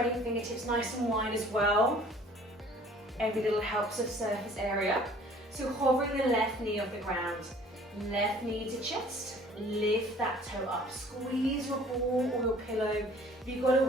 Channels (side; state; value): both; normal; correlation 0.52